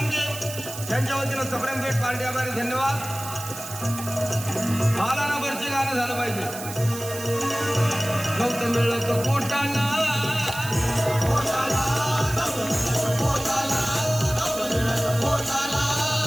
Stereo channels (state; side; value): noise; right; hiss, 10 dB below the sound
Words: त्यांच्या वतीनं सप्रेम भेट पार्टी आभारी. धन्यवाद. मला ना वरचे गाणं झालं पाहिजे. गौतम मिळत पोटाला